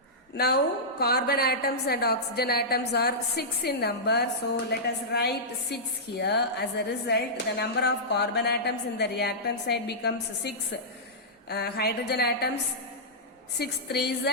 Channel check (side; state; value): both; normal; correlation -0.14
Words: Now carbon atoms and oxygen atoms are 6 in number. So let us write 6 here. As a result, the number of carbon atoms in the reactant side becomes 6. Hydrogen atoms 6 3s